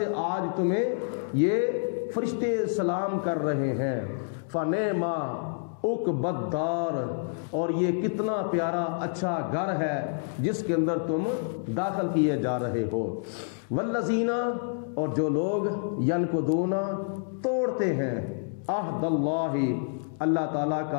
آج تمہیں یہ فرشتے سلام کر رہے ہیں۔ فنعما، عقبی الدار، اور یہ کتنا پیارا اچھا گھر ہے جس کے اندر تم داخل کیے جا رہے ہو۔ والذین، اور جو لوگ ینقضون توڑتے ہیں عہد اللہ، اللہ تعالیٰ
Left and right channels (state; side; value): silent; right; digital silence